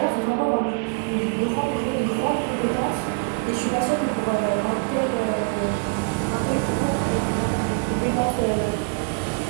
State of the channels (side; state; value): left; silent; 58 dB below the other